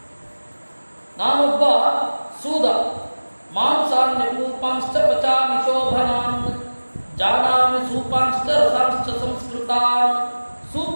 ನಾನೊಬ್ಬ ಸೂದ. ಮಾಂಸಾನ್ಯ ಕೂಪಾಂಶ್ಚ ಪಚಾಮಿ ಶೋಭನಾನ್ ಜಾನಾಮಿ ಸೂಪಾಂಶ್ಚ ರಸಾಂಶ್ಚ ಸಂಸ್ಕೃತಾನ್.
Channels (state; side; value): inverted; both; correlation -1.00